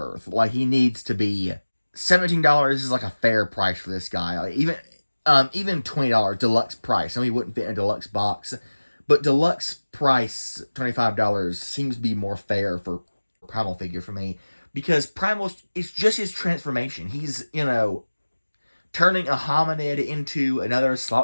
Like, he needs to be... $17 is like a fair price for this guy. Like, even $20 deluxe price. I mean, he wouldn't fit in a deluxe box, but deluxe price $25 seems to be more fair for Primal figure for me, because Primal is just his transformation. He's, turning a hominid into another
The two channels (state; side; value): inverted; both; correlation -1.00